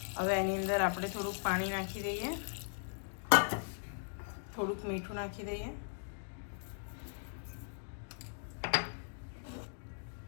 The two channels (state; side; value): silent; right; digital silence